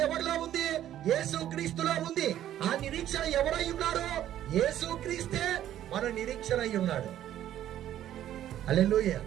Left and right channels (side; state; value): left; quieter; 11.9 dB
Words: ఎవరిలో ఉంది? యేసుక్రీస్తులో ఉంది. ఆ నిరీక్షణ ఎవరై ఉన్నాడు? యేసుక్రీస్తే మన నిరీక్షణ అయి ఉన్నాడు. హల్లెలూయా.